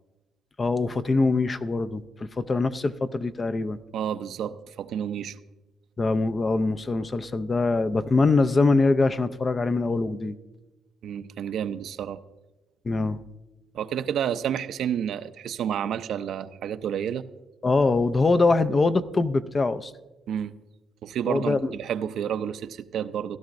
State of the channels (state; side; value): normal; both; correlation 0.86